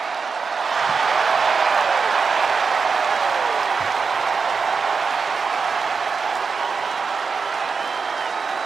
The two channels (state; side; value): quieter; left; 5.2 dB